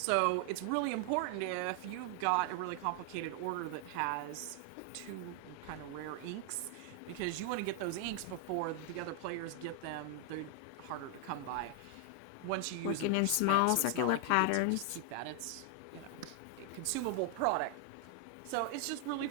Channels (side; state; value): both; different; correlation 0.00